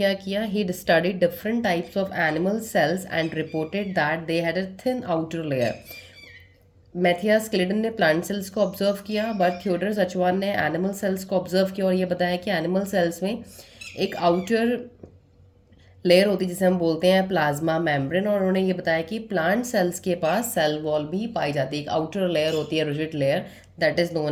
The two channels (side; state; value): both; identical; correlation 1.00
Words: किया? He studied different types of animal cells and reported that they had a thin outer layer. Matthias Schleiden ने प्लांट सेल्स को ऑब्जर्व किया, बट थियोडर सचवान ने एनिमल सेल्स को ऑब्जर्व किया और ये बताया कि एनिमल सेल्स में एक आउटर लेयर होती है जिसे हम बोलते हैं प्लाज्मा मेम्ब्रेन। और उन्होंने ये बताया कि प्लांट सेल्स के पास सेल वॉल भी पाई जाती है। एक आउटर लेयर होती है, rigid layer, that is